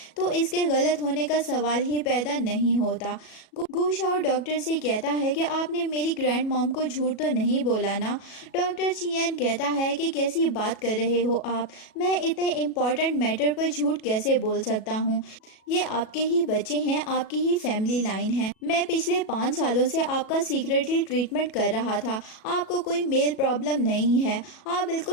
तो इसके गलत होने का सवाल ही पैदा नहीं होता। गू शाओ डॉक्टर से कहता है कि आपने मेरी ग्रैंड मॉम को झूठ तो नहीं बोला ना? डॉक्टर चियन कहता है कि कैसी बात कर रहे हो आप, मैं इतने इम्पोर्टेंट मैटर पर झूठ कैसे बोल सकता हूँ? ये आपके ही बच्चे हैं, आपकी ही फैमिली लाइन है। मैं पिछले 5 सालों से आपका सीक्रेटली ट्रीटमेंट कर रहा था, आपको कोई मेल प्रॉब्लम नहीं है, आप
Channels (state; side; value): late; right; 37 ms